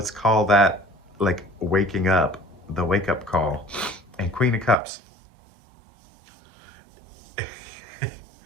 call that like waking up, the wake-up call, and Queen of Cups.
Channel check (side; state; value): left; drops out; at 4.8 s